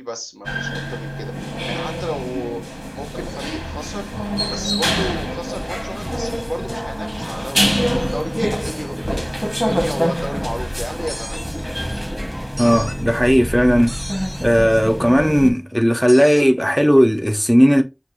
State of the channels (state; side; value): identical; both; correlation 1.00